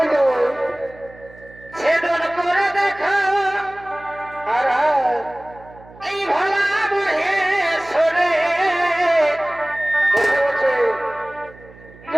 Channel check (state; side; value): noise; right; hum, 22 dB below the sound